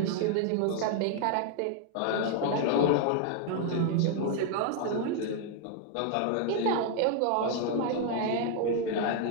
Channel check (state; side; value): different; both; correlation 0.00